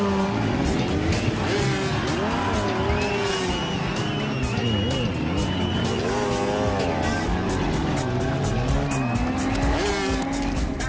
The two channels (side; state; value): both; identical; correlation 1.00